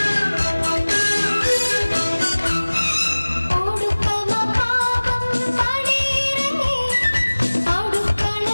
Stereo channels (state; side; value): inverted; both; correlation -1.00